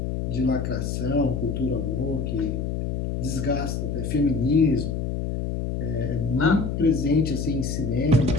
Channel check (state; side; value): noise; left; hum, 2 dB below the sound